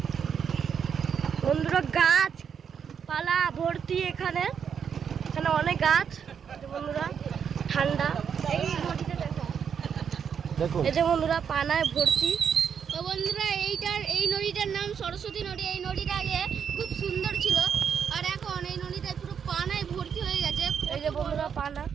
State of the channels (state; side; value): quieter; left; 7.4 dB